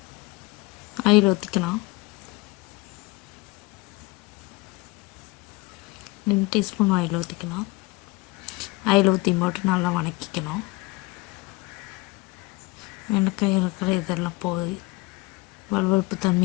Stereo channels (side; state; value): right; quieter; 22.0 dB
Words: ஆயில் ஊற்றிக்கலாம். 2 டீஸ்பூன் ஆயில் ஊற்றிக்கலாம். ஆயில் ஊற்றி போட்டு நல்லா வதக்கிக்கணும். வெண்டைக்காய் இருக்கிற இதெல்லாம் போய் வலுவழுப்பு